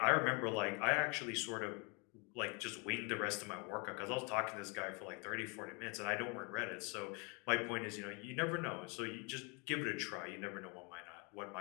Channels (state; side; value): quieter; right; 32.5 dB